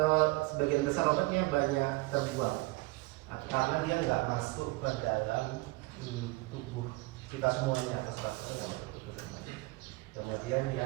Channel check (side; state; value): left; quieter; 22.8 dB